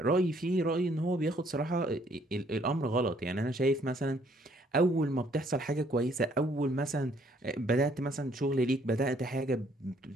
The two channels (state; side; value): normal; both; correlation 0.65